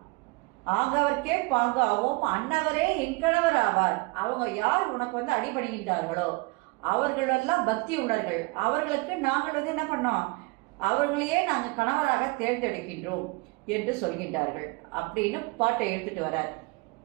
ஆங்கவர்க்கே பாங்காவோம், அன்னவரே என் கணவர் ஆவார். அவங்க யார் உனக்கு அடிபடுகின்றார்களோ அவர்களெல்லாம் பக்தி உள்ளவர்கள், அவர்களுக்கு நாங்கள் என்ன பண்ணோம், அவர்களையே நாங்கள் கணவராக தேர்ந்தெடுக்கின்றோம் என்று சொல்கின்றார்கள் அப்படின்னு பாட்டை எடுத்துட்டு வரார்.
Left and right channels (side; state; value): left; quieter; 26.4 dB